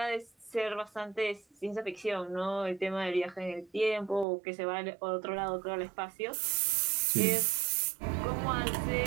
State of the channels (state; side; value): drops out; left; at 4.2 s